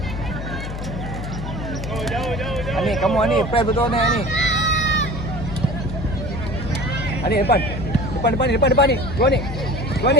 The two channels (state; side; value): noise; left; hum, 7 dB below the sound